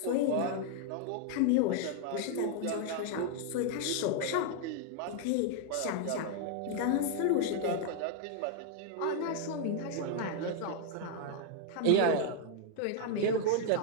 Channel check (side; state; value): both; different; correlation 0.00